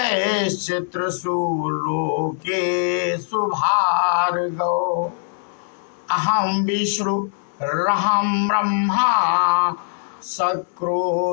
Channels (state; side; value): silent; right; 62 dB below the other